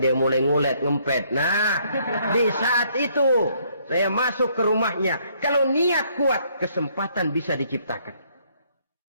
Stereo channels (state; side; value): inverted; both; correlation -0.67